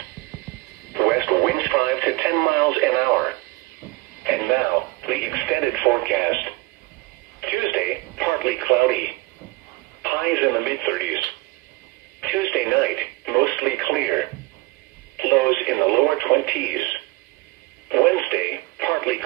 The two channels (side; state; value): left; quieter; 22.3 dB